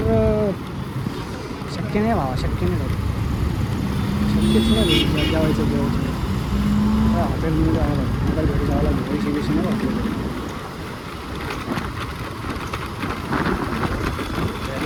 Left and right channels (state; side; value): identical; both; correlation 1.00